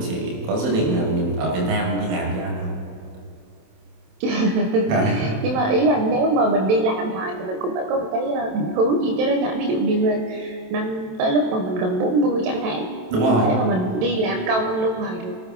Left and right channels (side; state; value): left; late; 27 ms